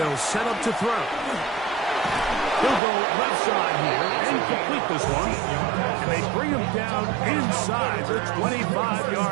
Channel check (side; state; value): left; drops out; at 2.8 s